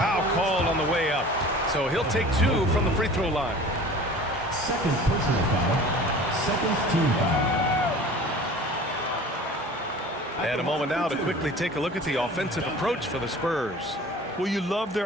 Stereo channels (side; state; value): both; normal; correlation 0.42